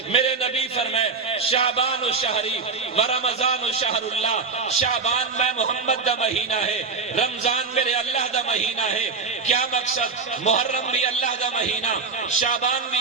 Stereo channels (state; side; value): quieter; left; 4.7 dB